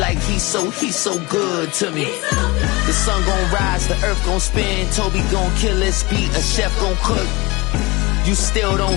he's so good to me. The sun gon' rise, the earth gon' spin. Toby gon' kill this beat, a chef gon' cook. You still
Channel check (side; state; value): right; quieter; 23.9 dB